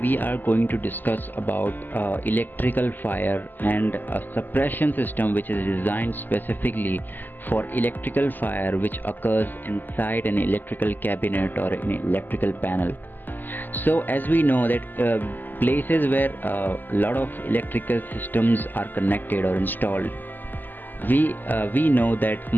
are going to discuss about electrical fire and a suppression system which is designed specifically for electrical fire which occurs inside an electrical cabinet or an electrical panel. So as we know that places where a lot of electrical systems are connected or installed, we know that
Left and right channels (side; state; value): right; late; 0.088 ms